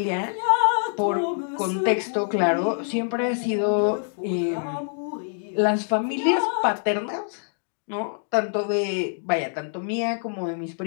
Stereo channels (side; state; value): right; silent; digital silence